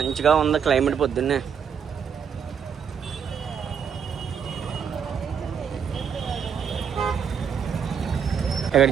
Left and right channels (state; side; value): quieter; left; 7.4 dB